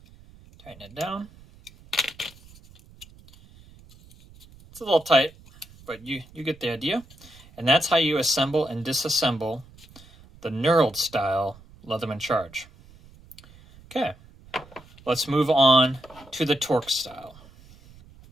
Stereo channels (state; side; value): noise; right; rumble, 24 dB below the sound